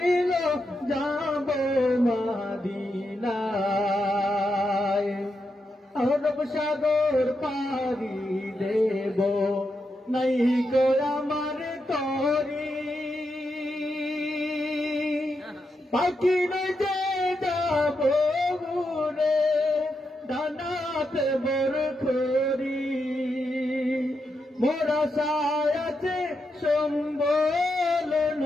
যাব মদিনায় আরব সাগর পাড়ি দেব নাই গো আমার তরি পাখি নয় যে যাব উড়ে ডানাতে বরখরি মোরা সায়াতে সম্বল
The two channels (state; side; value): normal; both; correlation 0.84